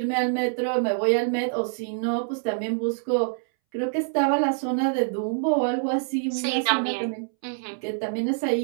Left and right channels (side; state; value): left; silent; 61 dB below the other